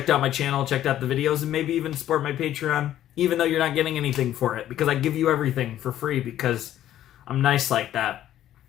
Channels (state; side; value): quieter; right; 12.2 dB